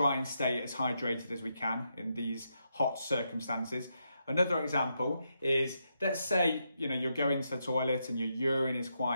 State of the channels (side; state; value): both; inverted; correlation -0.81